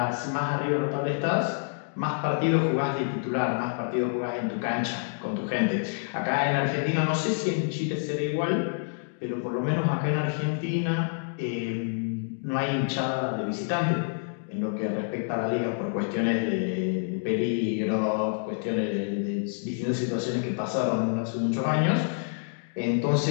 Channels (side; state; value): right; silent; digital silence